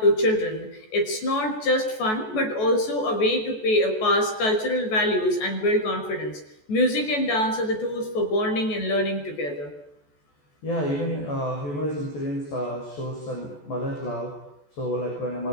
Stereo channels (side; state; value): right; late; 14 ms